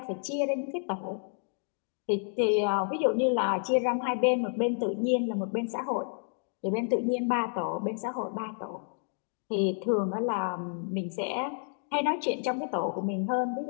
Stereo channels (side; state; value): right; silent; 58 dB below the other